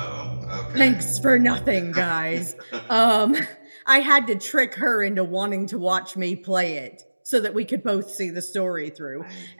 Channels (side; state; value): both; inverted; correlation -1.00